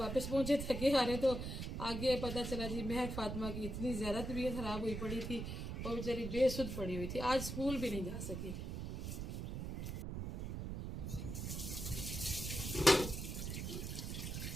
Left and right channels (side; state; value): right; noise; rumble, 4 dB below the sound